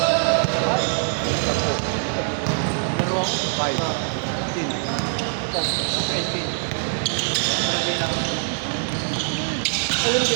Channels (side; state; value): left; silent; 59 dB below the other